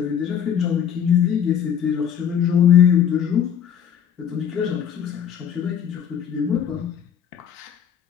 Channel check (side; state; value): right; quieter; 8.7 dB